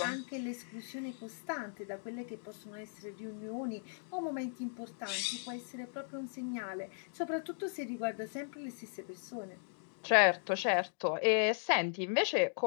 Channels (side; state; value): right; silent; digital silence